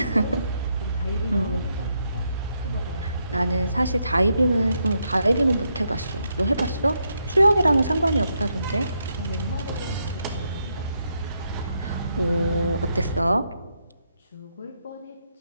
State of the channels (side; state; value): both; inverted; correlation -0.79